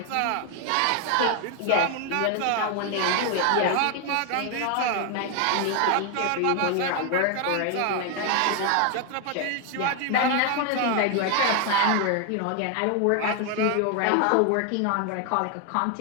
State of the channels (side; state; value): both; different; correlation 0.00